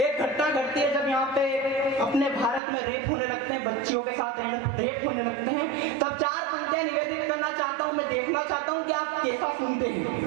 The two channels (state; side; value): drops out; left; at 2.6 s